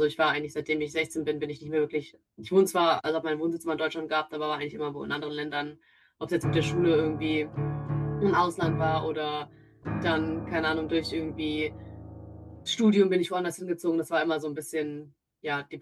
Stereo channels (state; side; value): identical; both; correlation 1.00